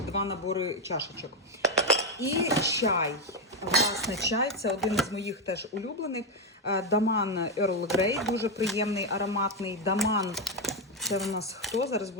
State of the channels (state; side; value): normal; both; correlation 0.05